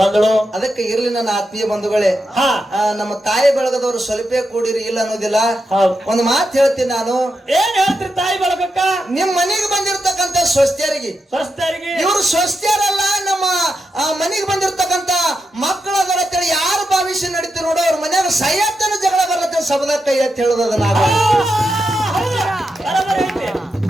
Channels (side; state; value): both; normal; correlation 0.86